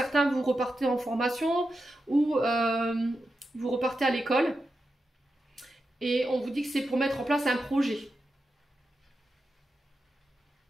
vous repartez en formation ou vous repartez à l'école. Et on vous dit que c'est pour mettre en place un projet.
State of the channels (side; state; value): both; normal; correlation 0.89